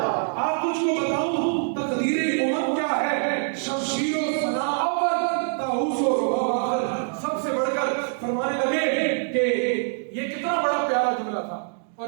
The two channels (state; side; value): silent; left; digital silence